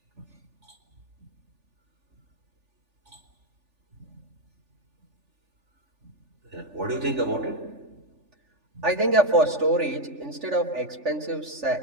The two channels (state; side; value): late; left; 3.4 ms